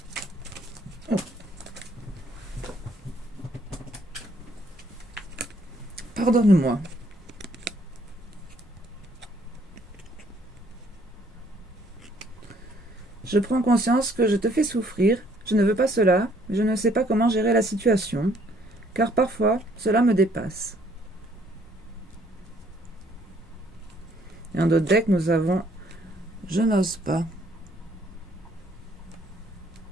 Oh. Pardonne-moi. Je prends conscience que je te fais souffrir. Je ne veux pas cela. Je ne sais pas comment gérer la situation. Car parfois, cela me dépasse. Et en d'autres decks, nous avons « Je n'ose pas ».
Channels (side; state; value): both; normal; correlation 0.64